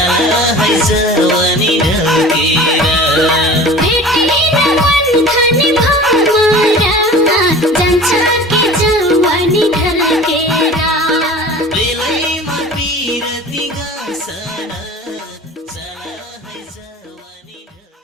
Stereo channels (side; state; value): both; normal; correlation 0.40